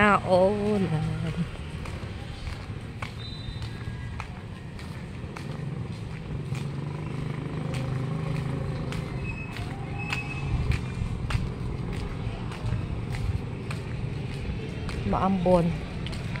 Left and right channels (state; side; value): identical; both; correlation 1.00